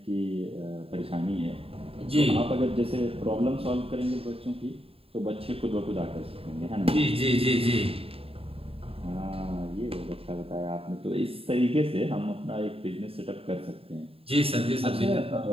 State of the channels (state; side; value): late; left; 0.27 ms